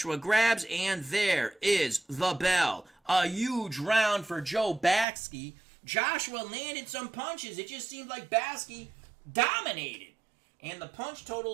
grabs, and there is the bell. A huge round for Joe Baksi. Joshua landed some punches. It just seemed like Baksi dominated. And the punch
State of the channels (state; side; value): drops out; left; at 5.1 s